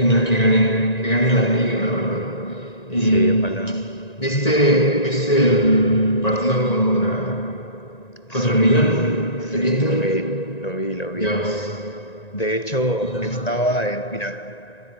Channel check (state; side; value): late; right; 1.9 ms